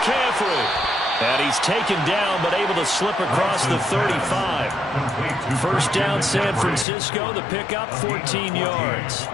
And he's taken down, but able to slip across the 35. First down, San Francisco. The pickup, 14 yards.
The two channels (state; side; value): drops out; right; at 6.9 s